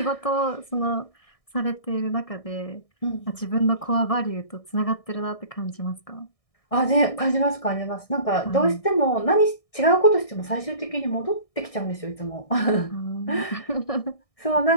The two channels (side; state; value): right; late; 1.6 ms